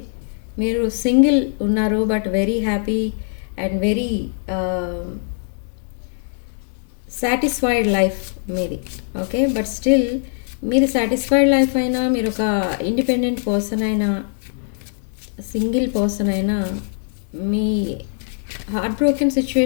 మీరు సింగిల్ ఉన్నారు but very happy and very satisfied life మీది. Okay, but still మీరు satisfied life అయినా, మీరు ఒక independent person అయినా, single person అయినా, మీ heart broken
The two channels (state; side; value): silent; right; digital silence